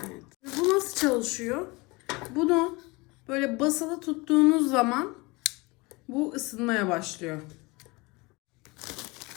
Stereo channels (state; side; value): quieter; right; 24.9 dB